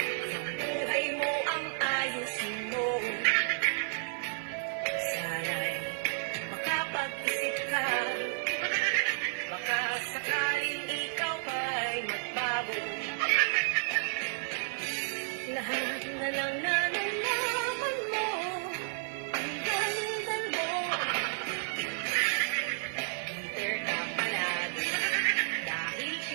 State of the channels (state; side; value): silent; left; digital silence